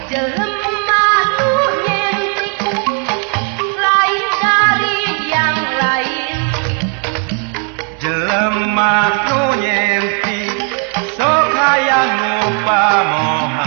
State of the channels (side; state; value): left; quieter; 38.8 dB